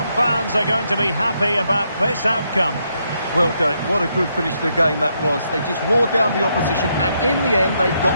fans are going to be happy about this outcome. Well, Derek, what a good finish to the game that was. They just wore down the opposition, and in the end, they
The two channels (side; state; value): both; inverted; correlation -0.77